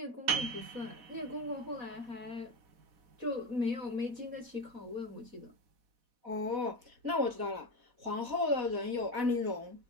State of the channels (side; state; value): left; late; 4.1 ms